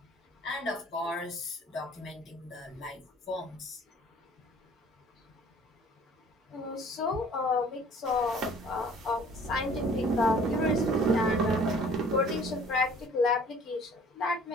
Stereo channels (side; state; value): both; normal; correlation 0.52